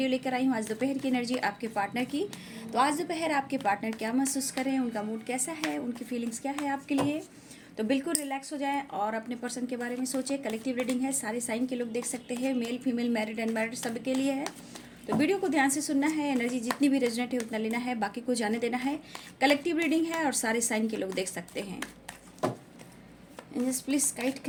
लेकर आई हूँ आज दोपहर की एनर्जी आपके पार्टनर की। तो आज दोपहर आपके पार्टनर क्या महसूस कर रहे हैं, उनका मूड कैसा है, उनकी फीलिंग्स क्या है आपके लिए। तो बिल्कुल रिलैक्स हो जाएं और अपने पर्सन के बारे में सोचें। कलेक्टिव रीडिंग है, सारे साइन के लोग देख सकते हैं, मेल फीमेल, मैरिड अनमैरिड सब के लिए है। तो वीडियो को ध्यान से सुनना है, एनर्जी जितनी भी रेजोनेट है उतना लेना है, बाकी को जाने देना है। कलेक्टिव रीडिंग है और सारे साइन के लोग देख सकते हैं। एंजल्स प्लीज गाइड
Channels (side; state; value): both; identical; correlation 1.00